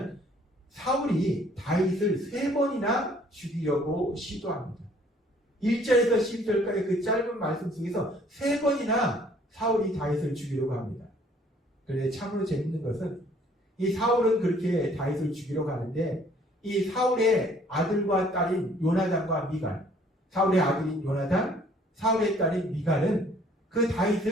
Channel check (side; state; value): both; normal; correlation 0.59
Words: 사울이 다윗을 3번이나 죽이려고 시도합니다. 1절에서 12절까지 그 짧은 말씀 속에서 3번이나 사울이 다윗을 죽이려고 합니다. 그런데 참으로 재밌는 것은 이 사울은 그렇게 다윗을 죽이러 가는데 이 사울의 아들과 딸인 요나단과 미갈, 사울의 아들인 요나단, 사울의 딸인 미갈은 그